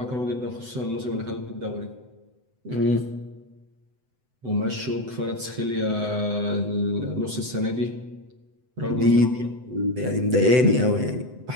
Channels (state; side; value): late; left; 7.9 ms